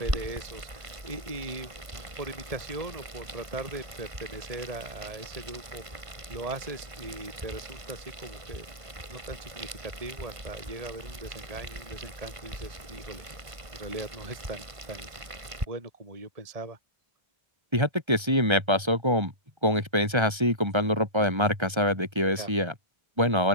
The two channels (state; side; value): late; left; 1.5 ms